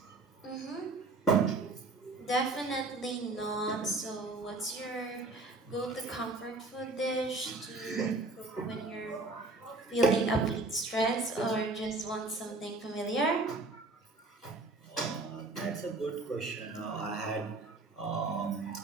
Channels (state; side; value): quieter; left; 3.2 dB